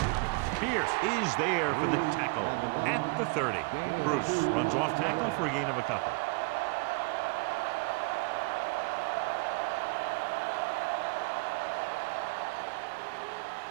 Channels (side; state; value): left; quieter; 30.4 dB